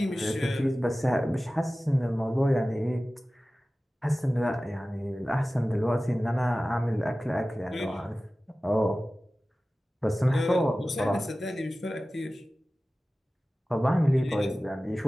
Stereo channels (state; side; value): normal; both; correlation 0.96